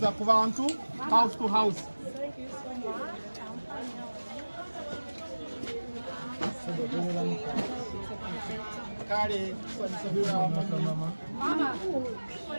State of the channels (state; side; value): inverted; both; correlation -1.00